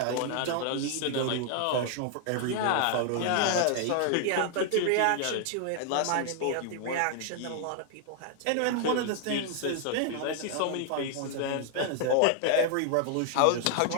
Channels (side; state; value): both; different; correlation 0.00